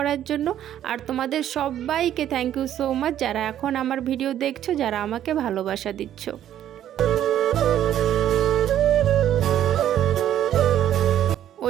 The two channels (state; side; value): quieter; left; 11.2 dB